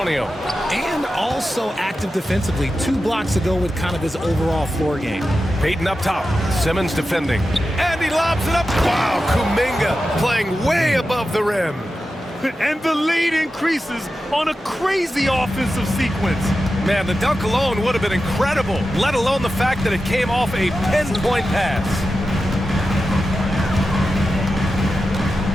And also active defensively. 2 blocks ago with kind of his overall floor game. Payton up top. Simmons defending. And he lobs it up. Wow, Kuminga playing way above the rim. And the lead increases on a crazy offensive sequence. Man, the dunk alone would have been incredible, let alone the fact that it came off a pinpoint pass.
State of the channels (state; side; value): normal; both; correlation 0.92